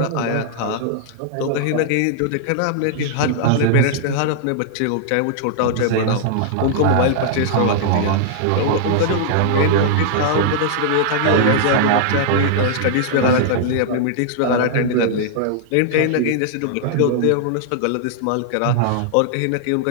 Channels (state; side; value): different; both; correlation -0.01